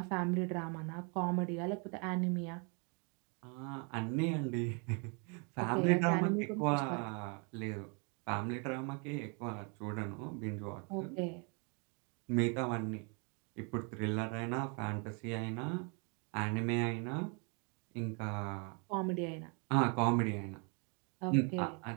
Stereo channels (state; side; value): quieter; left; 35.3 dB